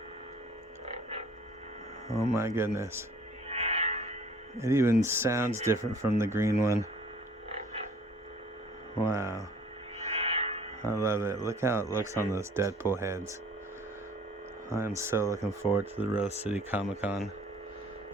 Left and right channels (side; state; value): both; normal; correlation 0.53